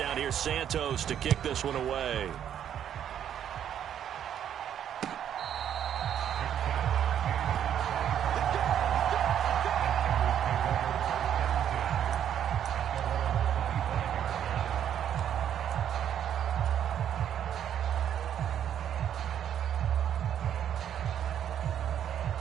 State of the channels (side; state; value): left; quieter; 9.7 dB